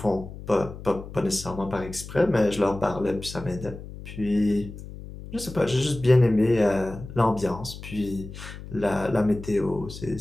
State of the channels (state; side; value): noise; left; hum, 13 dB below the sound